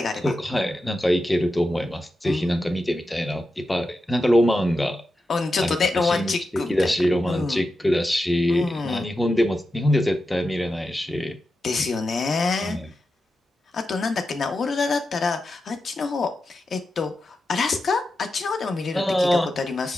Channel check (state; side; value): normal; both; correlation 0.90